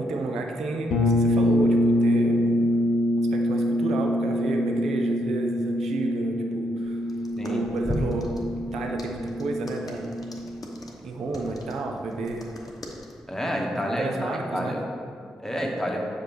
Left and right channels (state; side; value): normal; both; correlation 0.76